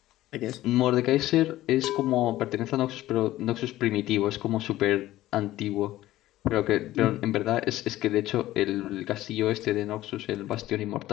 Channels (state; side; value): quieter; right; 15.4 dB